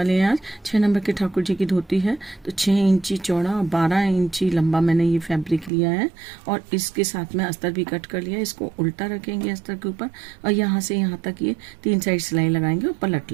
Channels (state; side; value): drops out; left; at 5.7 s